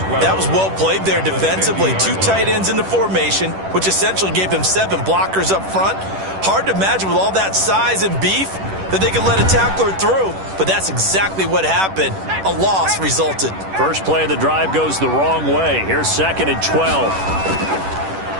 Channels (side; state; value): left; late; 10 ms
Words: That was well played there defensively. 2 tight ends in the formation, which essentially gave them 7 blockers up front. Hard to imagine with all that size and beef that they could let a tackler through, but that's exactly what happened. A loss resulted. First play of the drive goes the wrong way. Here's 2nd and